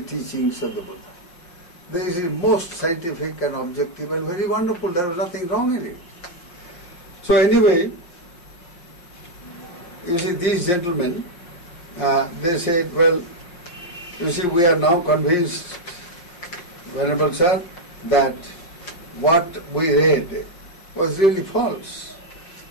teachings of the Buddha. This is most scientific and objective and very wonderful. There was nothing wrong in it. So anyway, you see, these gentlemen, they said, well, you see, we are now convinced, Venerable Sir, that what we read was really false.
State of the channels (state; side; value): late; right; 5.6 ms